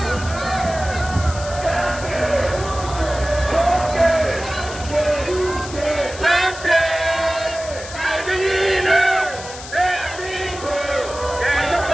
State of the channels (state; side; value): noise; left; hiss, 13 dB below the sound